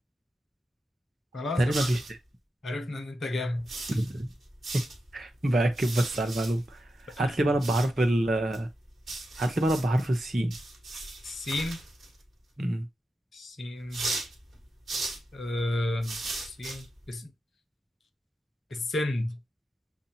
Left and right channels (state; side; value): normal; both; correlation 0.89